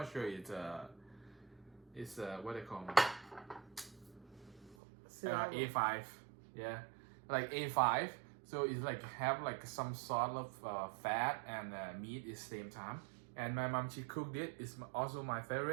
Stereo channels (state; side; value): drops out; left; at 4.8 s